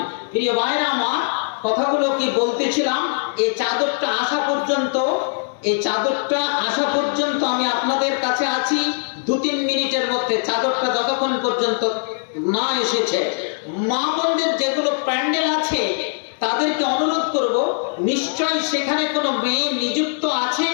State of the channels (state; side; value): silent; right; 63 dB below the other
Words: প্রিয় ভাইরা আমার, কথাগুলো কি বলতেছিলাম, এই চাদরটা আসা পর্যন্ত আমি আপনাদের কাছে আছি 2-3 মিনিটের মধ্যে। চাদরটা যতক্ষণ পর্যন্ত না এসেছে, মা বোনদের যেগুলো প্যান্ডেল আছে তাদেরকে অনুরোধ করব, নিশ্চয়ই সেখানে কোনো মেয়ে নিযুক্ত আছে,